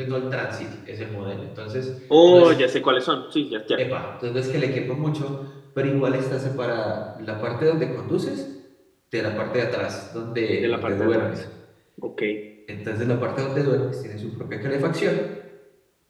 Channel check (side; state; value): both; identical; correlation 1.00